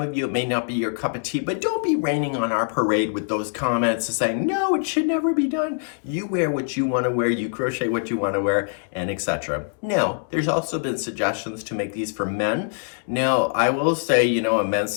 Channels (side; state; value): right; silent; 63 dB below the other